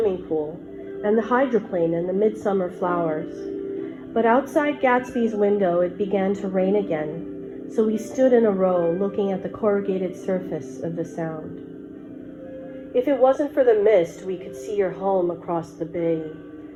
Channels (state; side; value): identical; both; correlation 1.00